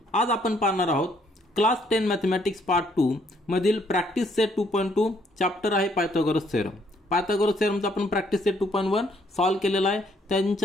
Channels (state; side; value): normal; both; correlation 0.68